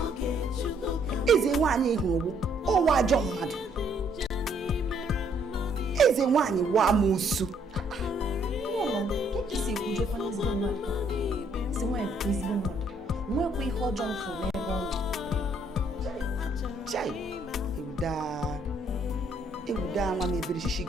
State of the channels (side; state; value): both; normal; correlation 0.67